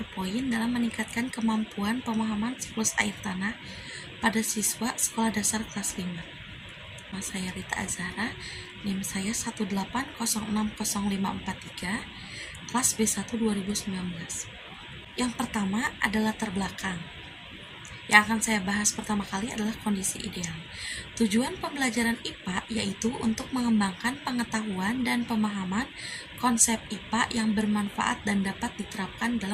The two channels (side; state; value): both; identical; correlation 1.00